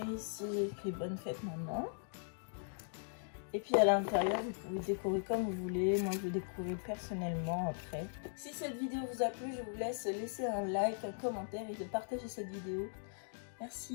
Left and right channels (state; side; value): silent; right; digital silence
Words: ici, j'ai écrit bonne fête maman. Et puis à l'intérieur, vous pouvez décorer comme vous voulez. Moi, je vais décorer personnellement après. Si cette vidéo vous a plu, je vous laisse laisser un like, un commentaire et de partager cette vidéo.